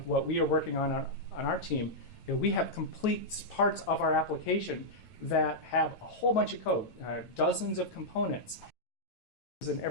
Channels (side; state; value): right; late; 9.1 ms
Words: what we are working on our team, we have complete parts of our application that have a whole bunch of code, dozens of components, and